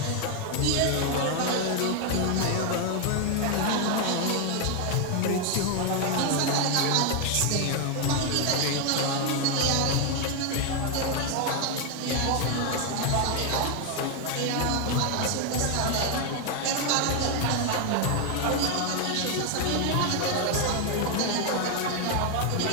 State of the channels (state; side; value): different; both; correlation 0.01